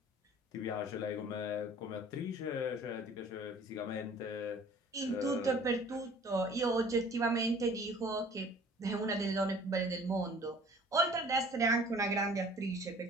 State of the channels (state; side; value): normal; both; correlation 0.50